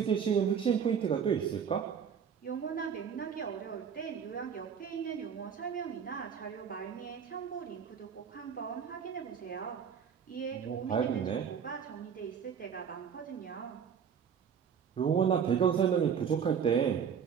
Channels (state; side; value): quieter; left; 7.4 dB